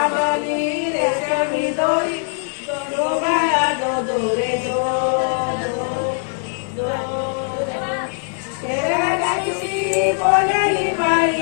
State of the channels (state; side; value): silent; right; 61 dB below the other